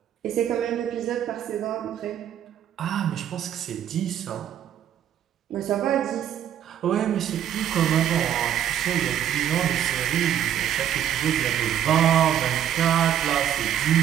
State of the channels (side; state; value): left; quieter; 10.3 dB